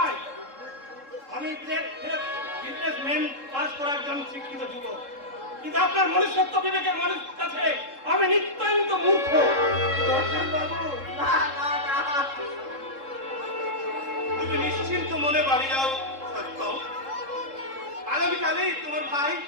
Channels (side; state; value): left; late; 3.7 ms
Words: আমি বিজনেসম্যান পাস করা একজন শিক্ষিত যুবক, কিন্তু আপনার মনুষ্যত্ব বিবেকের মানুষ কাছে আমি নিতান্ত মূর্খ। রঞ্জন বাবু, না না না, তুমি নিশ্চিন্ত মনে বাড়ি যাও সত্য। আগামীকালেই তোমার ভাই